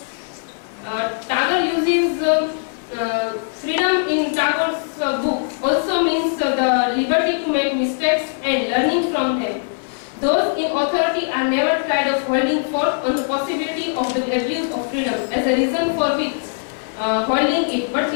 Tagore uses freedom in Tagore's book also means the liberty to make mistakes and learning from them. Those in authority are never tired of holding forth on the possibility of the abuse of freedom as a reason for which holding it. But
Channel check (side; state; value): right; silent; 60 dB below the other